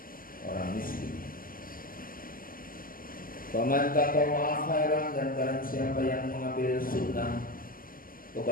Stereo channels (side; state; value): right; late; 0.41 ms